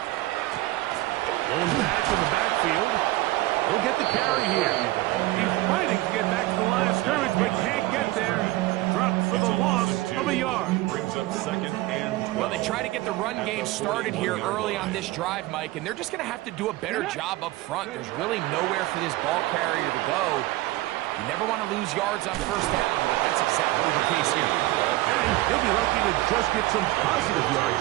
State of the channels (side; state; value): left; quieter; 18.3 dB